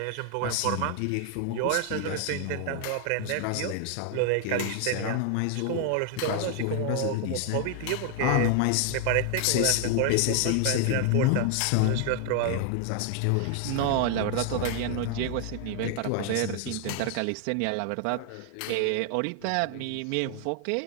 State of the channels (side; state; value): both; different; correlation 0.00